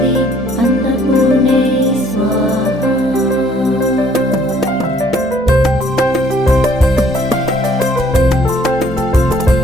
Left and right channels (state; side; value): normal; both; correlation 0.61